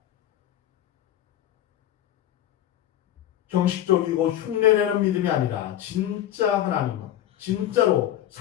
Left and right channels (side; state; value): right; quieter; 12.0 dB